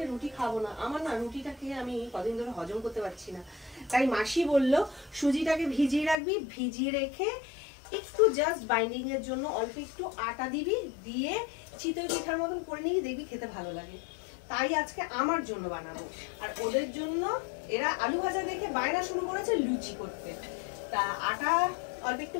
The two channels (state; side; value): drops out; right; at 6.2 s